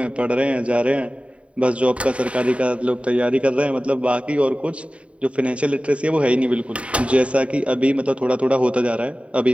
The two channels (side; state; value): left; late; 0.062 ms